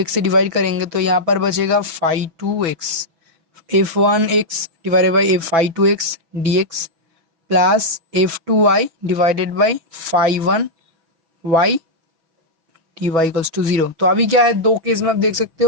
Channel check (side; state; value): left; late; 6.1 ms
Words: से डिवाइड करेंगे तो यहाँ पर बचेगा five two X, F one X divided by F five two X D X plus F two Y divided by five one Y D Y equals to zero. तो अभी क्या है, दो केस में आप देख सकते